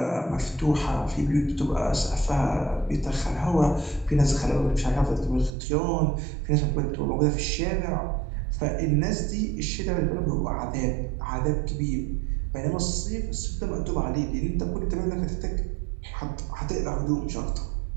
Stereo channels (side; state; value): left; drops out; at 5.5 s